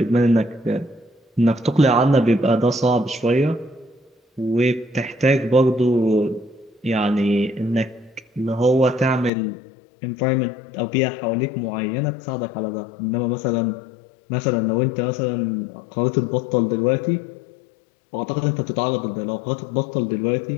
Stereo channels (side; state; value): right; drops out; at 9.3 s